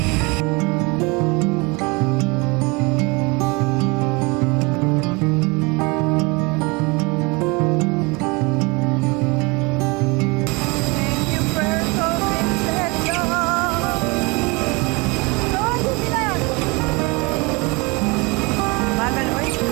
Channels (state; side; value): quieter; left; 27.2 dB